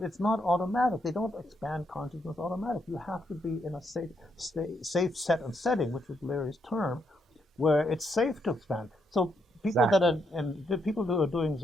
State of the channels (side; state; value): both; normal; correlation 0.77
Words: it's not automatic. They don't expand consciousness automatic. You have to be in a safe set and setting, which was Larry's term, where it's safe to expand. So people that are, and the people who are doing